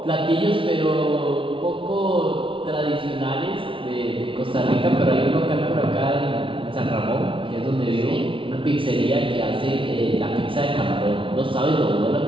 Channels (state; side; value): late; left; 0.25 ms